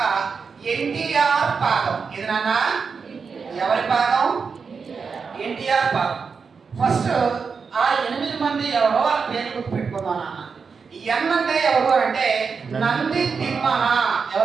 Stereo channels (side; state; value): left; quieter; 5.5 dB